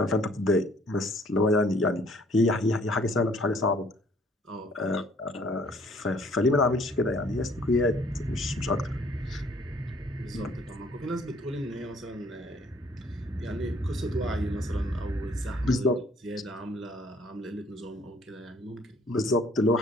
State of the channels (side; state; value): both; normal; correlation 0.59